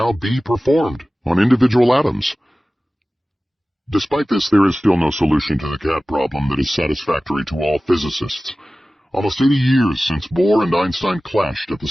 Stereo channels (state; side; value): normal; both; correlation 0.96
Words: be performed on individual atoms. Despite this, there is still no solution to the cat problem that is satisfactory to all physicists. Almost 80 years since Bohr and Einstein clashed at the